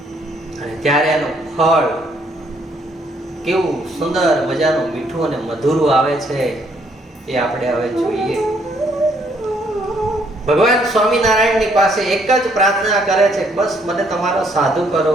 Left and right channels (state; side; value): normal; both; correlation 0.68